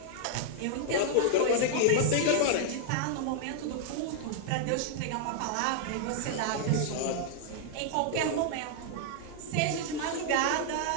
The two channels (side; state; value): both; different; correlation 0.00